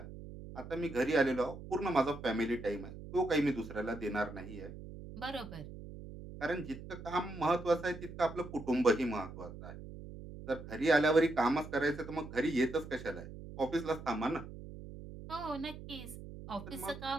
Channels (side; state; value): right; noise; hum, 12 dB below the sound